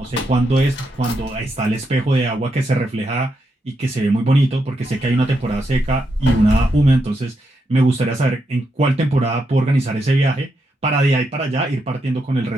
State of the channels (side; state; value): both; normal; correlation 0.82